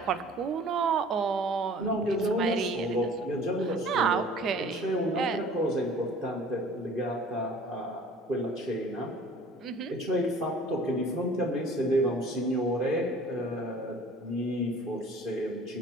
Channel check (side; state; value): both; normal; correlation 0.49